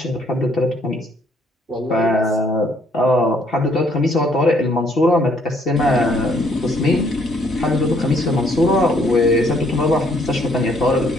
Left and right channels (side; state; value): both; normal; correlation 0.66